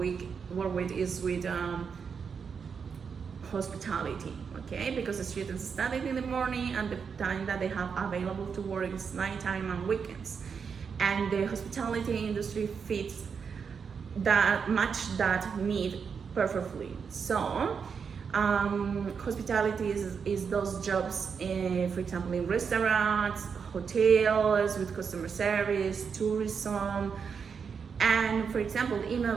is with hospitality. Okay, because the students study in the morning, and the time that they have available to work is nighttime and weekends, and the hospitality industry fits that need perfectly. So hospitality is those jobs, for example, in restaurants, hotels, with customer service, tourism. And for example, in a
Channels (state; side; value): quieter; left; 6.2 dB